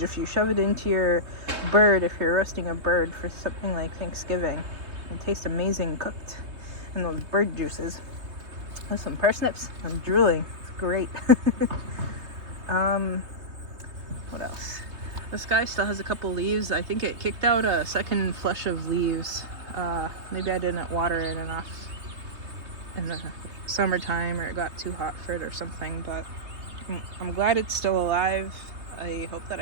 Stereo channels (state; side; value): late; left; 3.2 ms